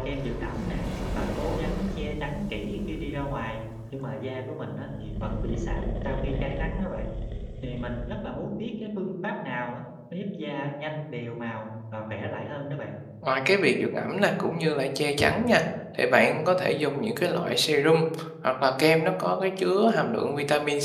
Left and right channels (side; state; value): both; identical; correlation 1.00